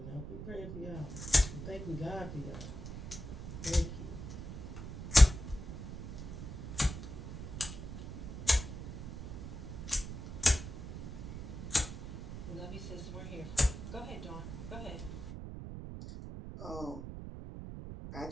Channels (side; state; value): right; noise; rumble, 8 dB below the sound